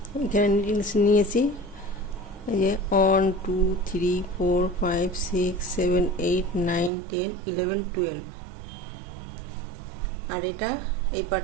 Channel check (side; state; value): left; drops out; at 6.9 s